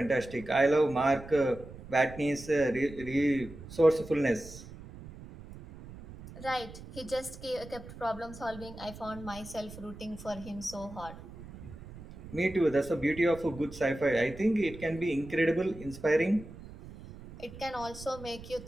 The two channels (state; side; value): noise; right; rumble, 15 dB below the sound